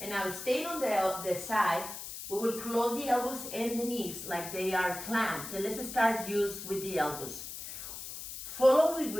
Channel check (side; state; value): left; noise; hiss, 9 dB below the sound